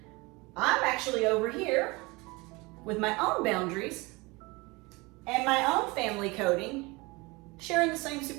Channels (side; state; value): left; quieter; 24.9 dB